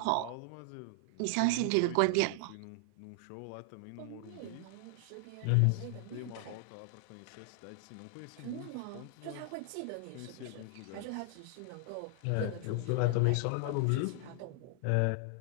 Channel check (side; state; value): both; different; correlation 0.00